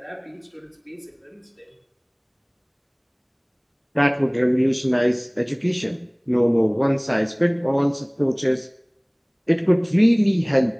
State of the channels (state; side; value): identical; both; correlation 1.00